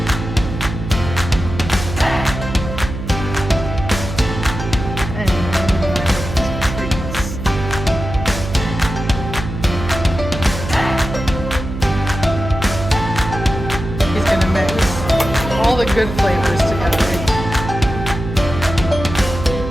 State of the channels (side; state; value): right; noise; hum, 7 dB below the sound